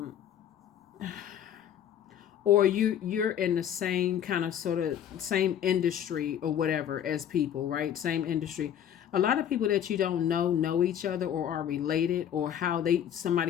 or you're in the same kind of sort of same industry or whatever as people, right? Same industry. A lot of people that you don't know each other or are related, or how somebody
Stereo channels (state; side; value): quieter; right; 9.8 dB